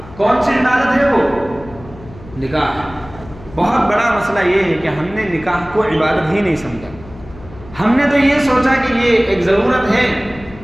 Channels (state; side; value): noise; left; hum, 19 dB below the sound